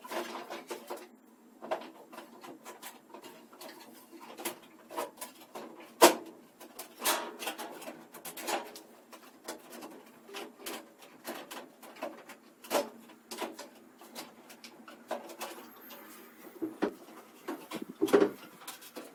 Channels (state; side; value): identical; both; correlation 1.00